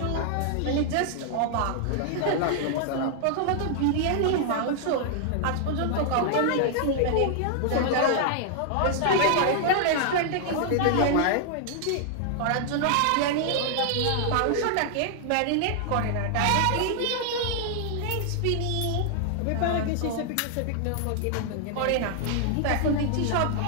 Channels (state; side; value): different; both; correlation 0.00